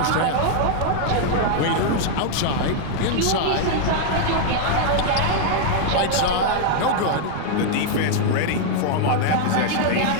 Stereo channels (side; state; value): both; different; correlation 0.00